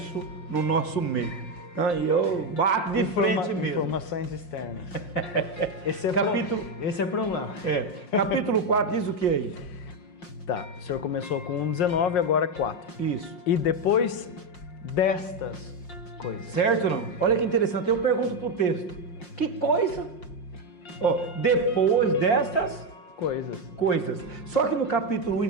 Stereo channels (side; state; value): right; late; 5.6 ms